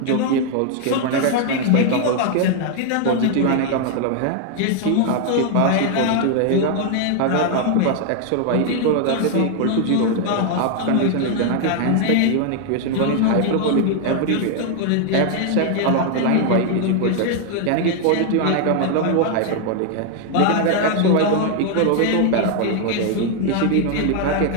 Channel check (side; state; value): both; different; correlation 0.00